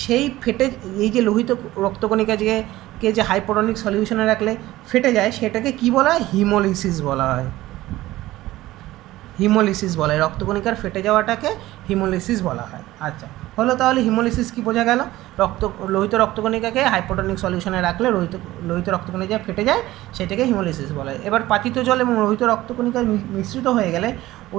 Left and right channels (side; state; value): left; quieter; 16.6 dB